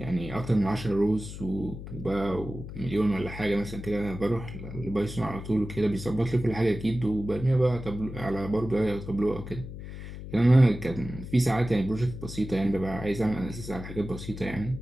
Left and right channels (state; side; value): noise; left; hum, 10 dB below the sound